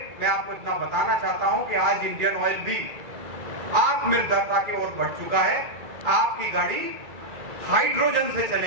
मैं आपको इतना बताना चाहता हूं कि आज इंडियन ऑयल भी आत्मनिर्भरता की ओर बढ़ चुका है। आपकी गाड़ी हाइड्रोजन से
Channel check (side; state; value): left; late; 2.3 ms